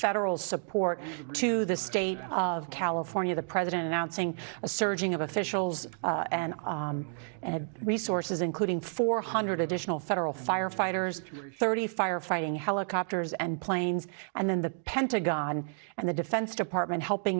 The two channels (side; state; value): left; silent; 57 dB below the other